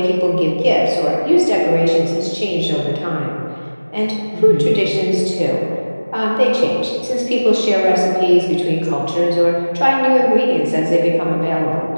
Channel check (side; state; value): both; inverted; correlation -1.00